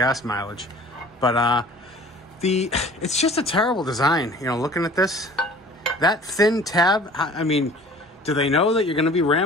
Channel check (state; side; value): normal; both; correlation 0.47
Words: mileage. But it's just a terrible design. You know, looking at this, that thin tab, I mean, do they know that you're going to be